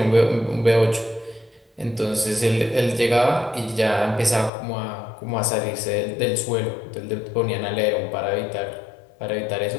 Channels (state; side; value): drops out; right; at 4.5 s